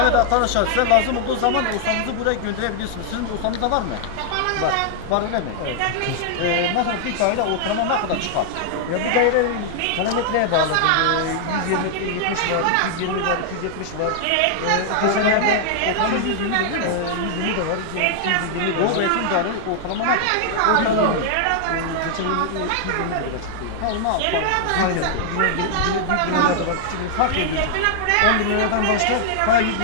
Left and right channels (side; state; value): both; different; correlation -0.01